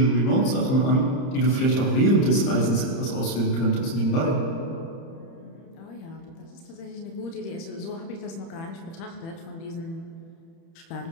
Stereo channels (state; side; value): late; right; 30 ms